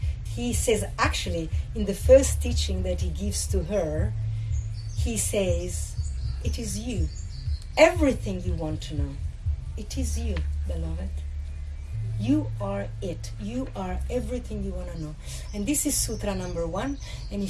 He says, actually, in the first teaching that he gives to her, he says, it is you. Everything you want to know. It is you, beloved. You are it. You are everything you want to know. And this is Sutra number 1. And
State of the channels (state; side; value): identical; both; correlation 1.00